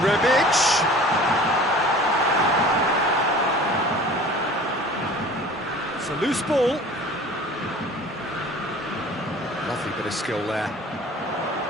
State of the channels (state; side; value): normal; both; correlation 0.44